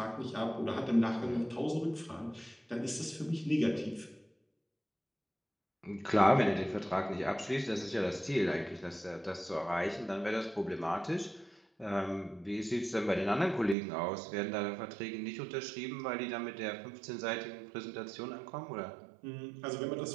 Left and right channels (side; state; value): left; drops out; at 13.8 s